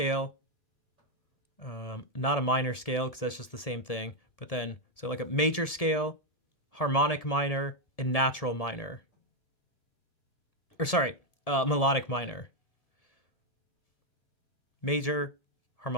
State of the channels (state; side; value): late; right; 1.7 ms